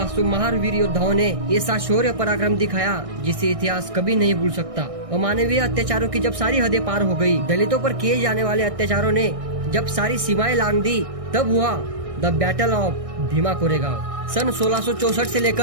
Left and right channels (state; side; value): late; left; 1.6 ms